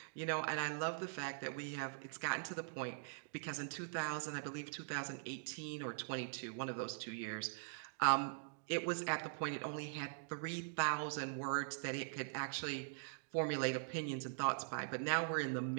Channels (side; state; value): left; silent; digital silence